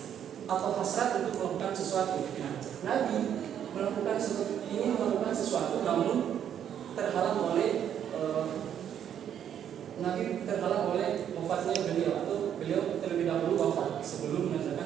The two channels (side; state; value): left; quieter; 9.4 dB